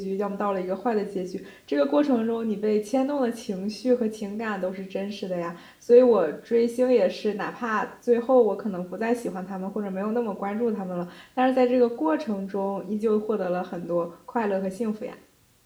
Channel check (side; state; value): both; identical; correlation 1.00